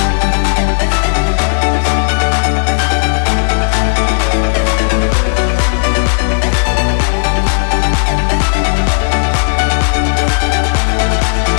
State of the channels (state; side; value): silent; right; digital silence